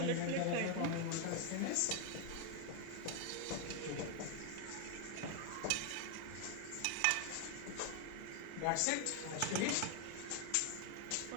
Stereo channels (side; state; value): both; different; correlation 0.00